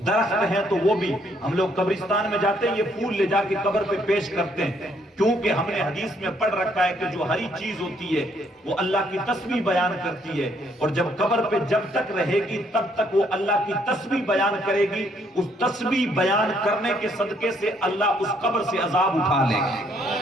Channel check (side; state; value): both; normal; correlation 0.68